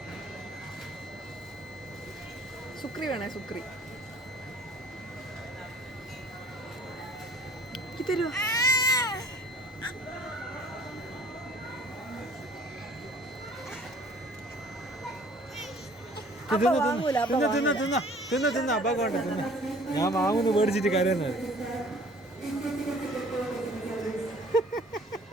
സുക്രി വേണേ സുക്രി തരുവോ? ഞാൻ വാങ്ങുന്നു മേടിച്ചിട്ട് കരയുന്നത്.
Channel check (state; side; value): normal; both; correlation 0.53